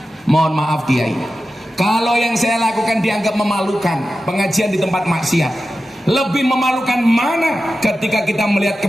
Mohon maaf Kiai, kalau yang saya lakukan dianggap memalukan, pengajian di tempat maksiat. Lebih memalukan mana ketika kita melihat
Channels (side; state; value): both; normal; correlation 0.93